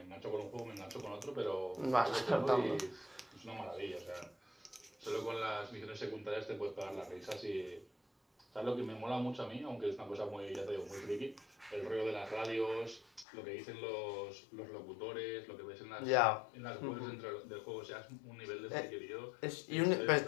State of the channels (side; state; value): right; drops out; at 13.2 s